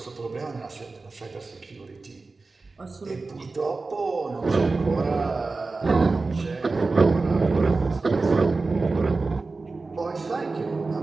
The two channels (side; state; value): left; quieter; 3.8 dB